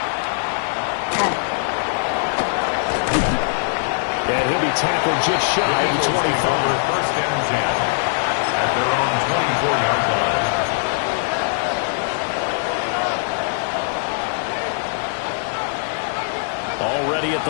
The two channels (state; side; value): silent; right; 65 dB below the other